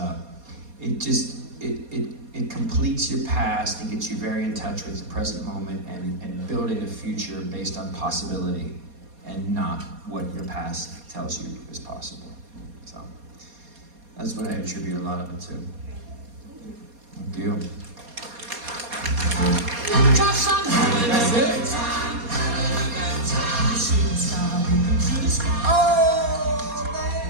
it completes your past and gets you very in touch with the present moment and building a future based on possibility and not what your past tells you is possible. So that's what I attribute a lot of it to. Thank you. That's it. Oh,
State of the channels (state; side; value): late; left; 4.2 ms